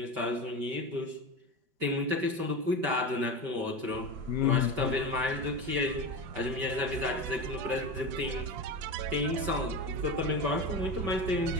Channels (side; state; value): left; late; 5.2 ms